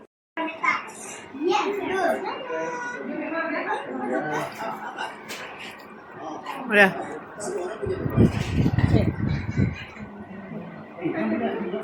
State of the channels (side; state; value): both; identical; correlation 1.00